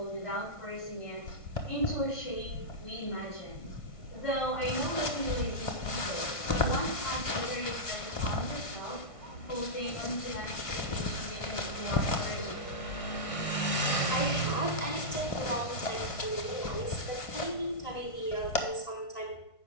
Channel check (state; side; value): late; right; 1.5 ms